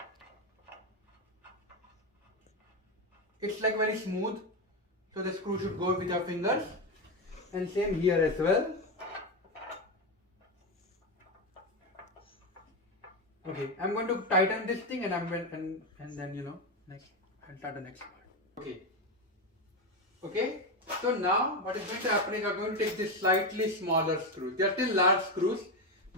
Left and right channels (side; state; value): both; normal; correlation 0.12